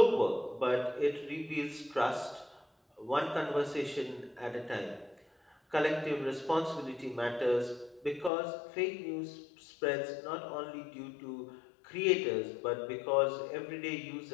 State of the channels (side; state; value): right; drops out; at 8.3 s